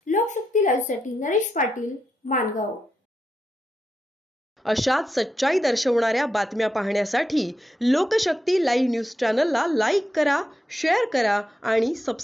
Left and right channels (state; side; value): normal; both; correlation 0.85